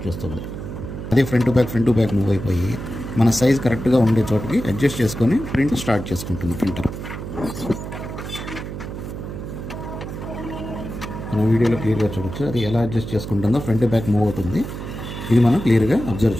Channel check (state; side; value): noise; right; hum, 8 dB below the sound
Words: చేస్తుంది. అదే ఫ్రంట్ టు బ్యాక్ మూవ్ అయిపోయి మన సైజ్ కరెక్ట్గా ఉండే చోటకి అడ్జస్ట్ చేసుకొని ప్రింట్ స్టార్ట్ చేసుకుంటుంది ప్రింటర్. మన వీడియోలో క్లియర్గా చూడొచ్చు అది ఎలా అడ్జస్ట్ చేసుకుంటుందో. ఫ్రంట్ టు బ్యాక్ మూవ్ అవుతుంది. ఇది మనం క్లియర్గా అబ్జర్వ్